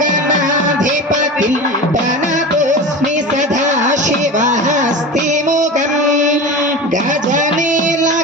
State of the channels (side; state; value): both; normal; correlation 0.30